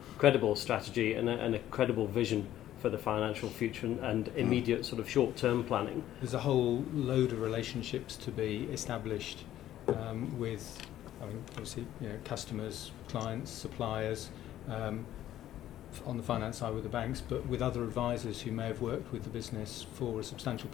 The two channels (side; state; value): right; quieter; 12.7 dB